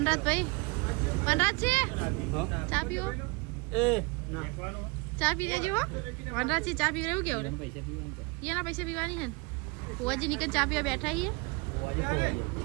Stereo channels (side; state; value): left; quieter; 28.4 dB